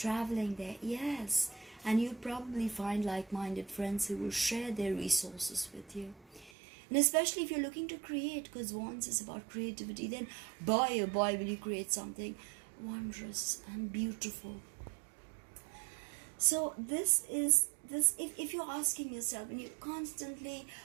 there? Yes. And you'll probably find like-minded friends who will share their resources with you. And especially if you're looking to create, because once is about creativity, then boy, oh boy, will you create something wondrous and beautiful. So this is this. If you're asking yourself, and you're constantly,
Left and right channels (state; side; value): drops out; left; at 6.5 s